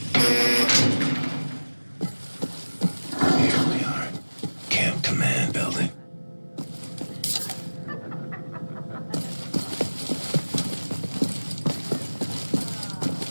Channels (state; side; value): inverted; both; correlation -1.00